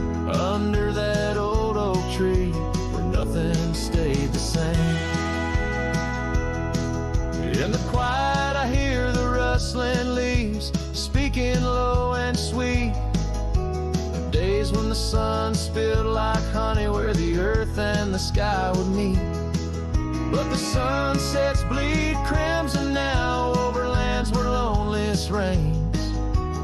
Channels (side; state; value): both; identical; correlation 1.00